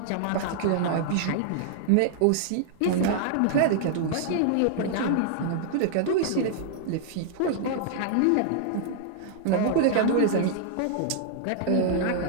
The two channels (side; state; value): both; different; correlation -0.01